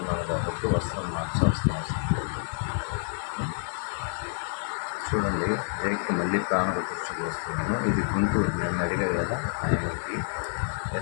కాబట్టి వస్త్రం మార్చాల్సిన అవసరం లేదు. చూడండి, రేక్కి మళ్ళీ ప్రాణప్రతిష్ఠ పోస్తున్నాను. ఇది గుంటూరు. నన్ను అడిగాడు కదా ఆయనకి,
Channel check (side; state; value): right; silent; 59 dB below the other